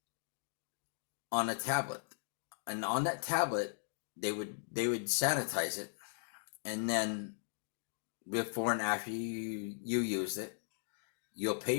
on a tablet. And on that tablet, they would sanitize it, and then before and after you use it, you'll pay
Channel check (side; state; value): right; silent; digital silence